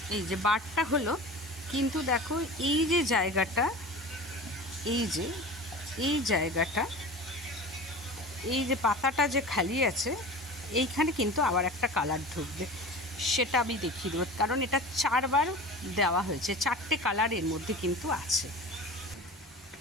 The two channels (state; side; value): normal; both; correlation 0.34